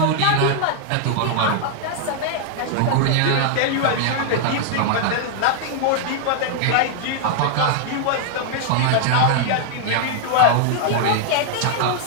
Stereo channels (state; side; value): different; both; correlation -0.01